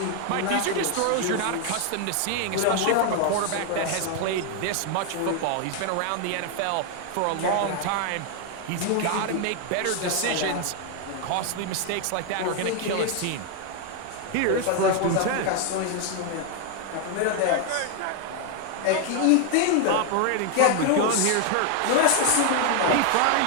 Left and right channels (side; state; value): both; different; correlation 0.00